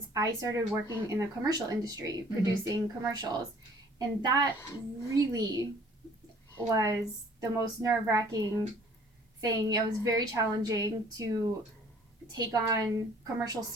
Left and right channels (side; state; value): both; normal; correlation 0.55